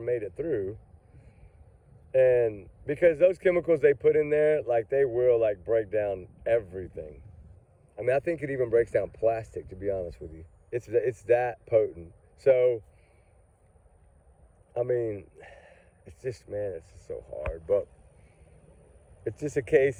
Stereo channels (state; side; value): identical; both; correlation 1.00